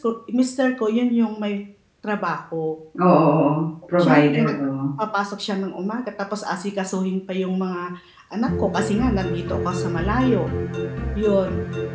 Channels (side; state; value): both; identical; correlation 1.00